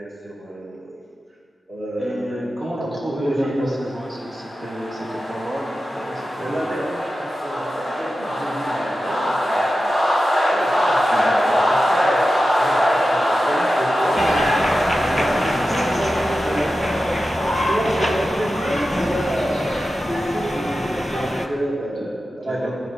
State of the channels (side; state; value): both; normal; correlation 0.93